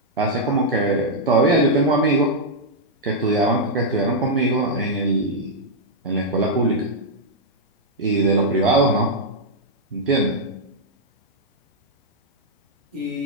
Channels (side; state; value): both; normal; correlation -0.05